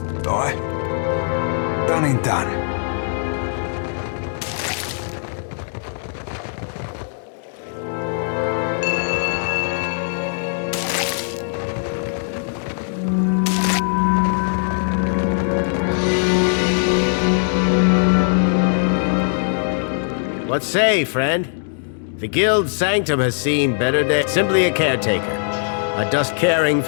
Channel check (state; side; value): silent; right; digital silence